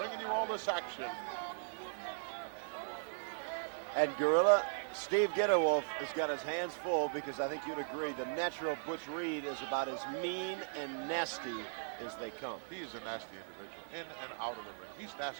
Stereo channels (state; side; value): silent; left; 52 dB below the other